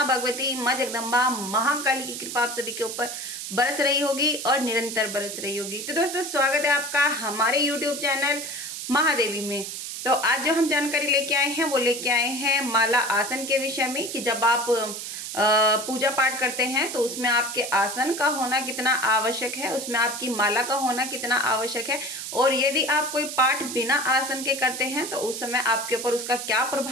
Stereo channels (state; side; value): noise; right; hiss, 7 dB below the sound